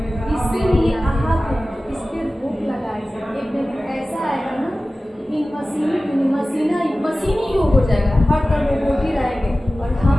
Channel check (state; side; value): normal; both; correlation 0.96